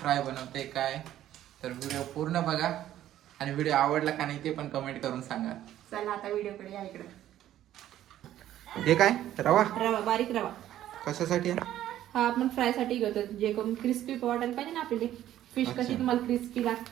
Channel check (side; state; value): left; quieter; 12.5 dB